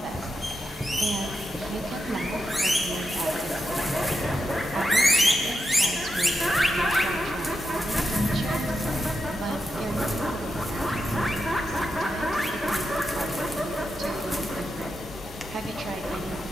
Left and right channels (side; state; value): both; normal; correlation 0.87